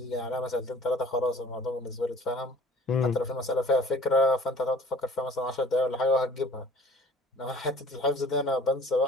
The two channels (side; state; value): both; normal; correlation 0.49